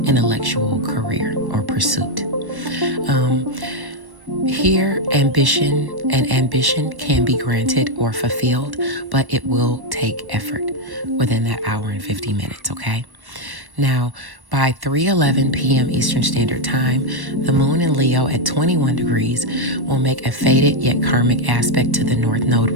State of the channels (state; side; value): late; left; 1.1 ms